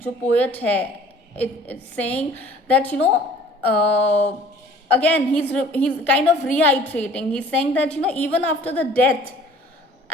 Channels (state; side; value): normal; both; correlation 0.51